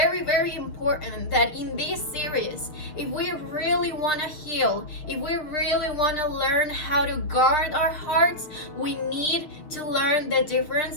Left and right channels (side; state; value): right; late; 6.6 ms